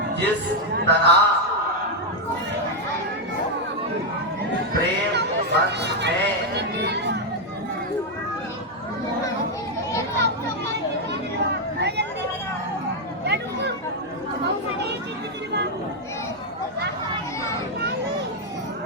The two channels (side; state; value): both; normal; correlation 0.01